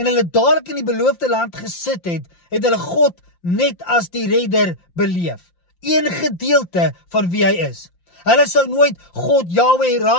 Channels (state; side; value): late; right; 5.7 ms